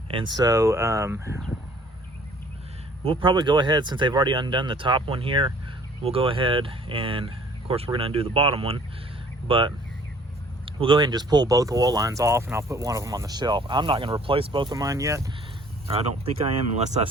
And so we'll probably go ahead, since they've already undone the top one here, we'll go ahead and, of course, we're gonna undo the bottom one, but we'll go ahead and just pull both oil lines off, and I'll put one of them on the shelf. I'm not gonna replace both of mine yet. I don't think I am, unless I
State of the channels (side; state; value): both; normal; correlation 0.55